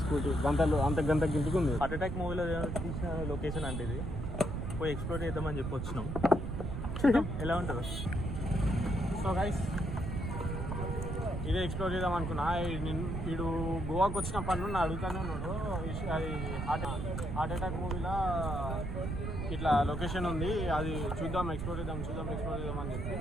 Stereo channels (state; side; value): noise; right; rumble, 3 dB below the sound